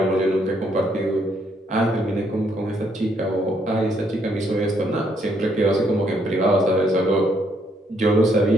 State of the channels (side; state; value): both; normal; correlation 0.71